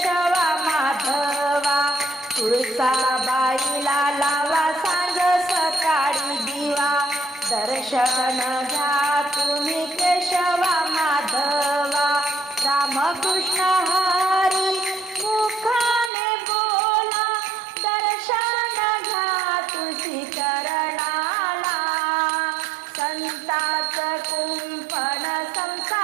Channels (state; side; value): drops out; left; at 16.1 s